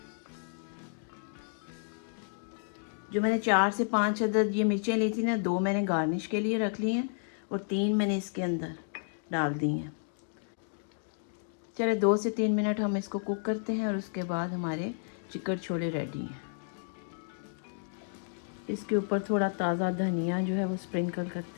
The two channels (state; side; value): silent; right; digital silence